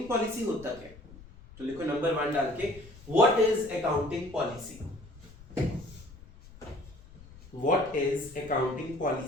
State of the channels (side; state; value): left; noise; rumble, 20 dB below the sound